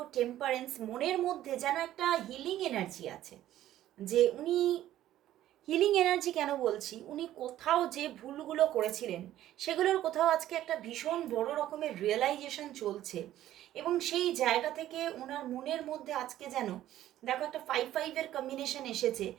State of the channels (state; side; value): quieter; left; 13.2 dB